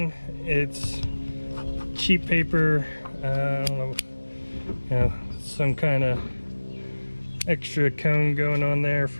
it's cheap paper, I don't know, you know, some kind of extra cone going on there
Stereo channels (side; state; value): both; inverted; correlation -1.00